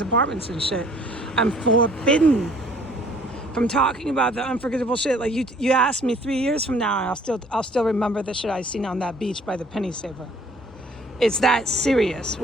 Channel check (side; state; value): both; normal; correlation 0.57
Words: apartments and shit. I'm forbidden from talking about the unforgettable shit. Like you asked me 3 years from now and I'll still remember the shit I seen on that beach by the Penny Saver. It's that serious,